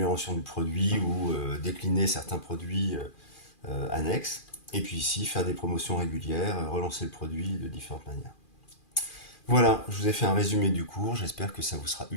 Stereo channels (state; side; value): late; right; 2.4 ms